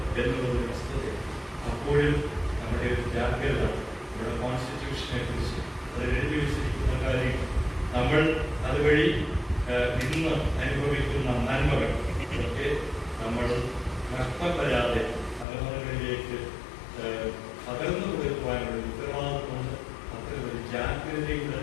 എന്നുള്ളൊരു വസ്തുതയാണ്. അപ്പോഴും നമ്മുടെ ഒരു ജാഗ്രത, നമ്മുടെ കോൺസ്റ്റിറ്റ്യൂഷനെ കുറിച്ച് അതിൽ എഴുതി വെച്ചിരിക്കുന്ന കാര്യം, നമ്മൾ അതുവഴി ഇന്ന് അനുഭവിക്കുന്ന നന്മകൾ ഇതൊക്കെ നമ്മൾ നഷ്ടം വരാതെ തലമുറകളിലേക്ക് പകർന്നു കൊടുക്കുവാനുള്ള ഉത്തരവാദിത്വമുണ്ട്. അത്തരമൊരു ജാഗ്രതയുടെ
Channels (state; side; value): drops out; right; at 15.5 s